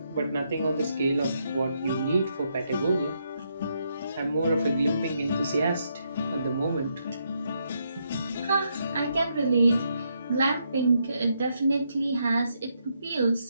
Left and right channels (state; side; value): inverted; both; correlation -0.78